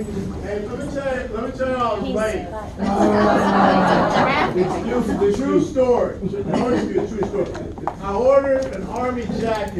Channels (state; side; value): identical; both; correlation 1.00